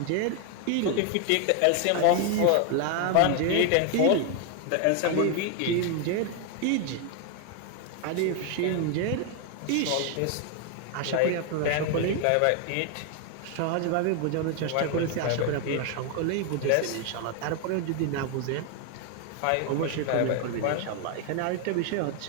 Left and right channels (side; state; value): both; different; correlation 0.01